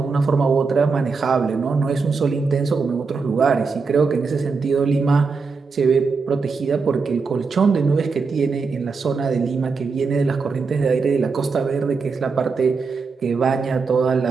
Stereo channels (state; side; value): quieter; left; 4.7 dB